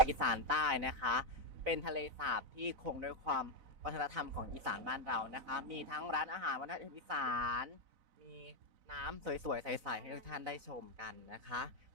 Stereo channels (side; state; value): left; late; 4.0 ms